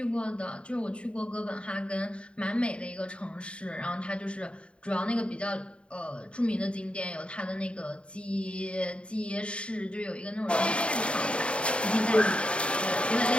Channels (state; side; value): late; right; 0.058 ms